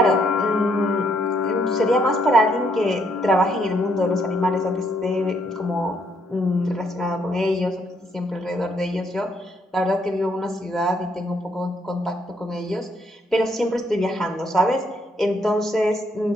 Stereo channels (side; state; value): both; normal; correlation 0.71